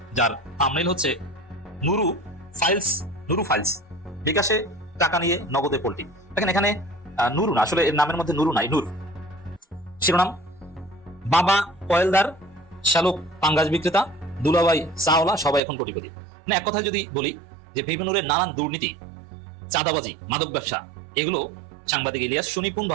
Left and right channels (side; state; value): left; drops out; at 15.6 s